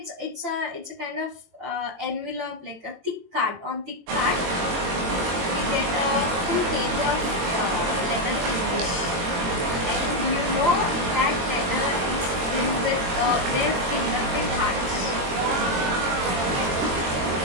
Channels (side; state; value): left; late; 22 ms